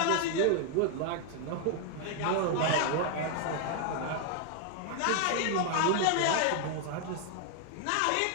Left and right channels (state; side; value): different; both; correlation 0.00